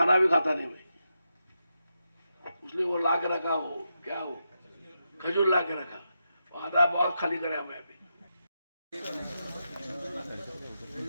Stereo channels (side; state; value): both; inverted; correlation -0.86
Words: भी खाता नहीं मैं, इसलिए वो ला के रखा, हो क्या हो खजूर ला के रखा, वो आधा बहुत खाली करे हमें अभी।